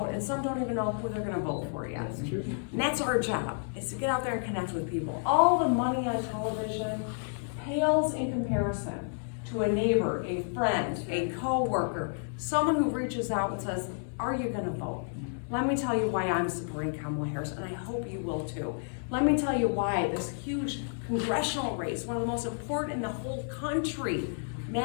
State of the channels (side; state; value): right; silent; digital silence